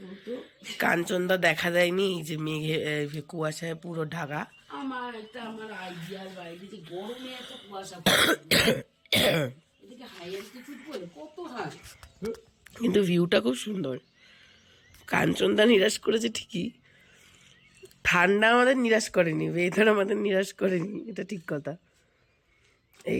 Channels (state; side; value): identical; both; correlation 1.00